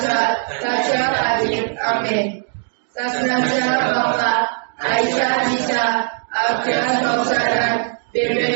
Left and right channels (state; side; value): silent; left; digital silence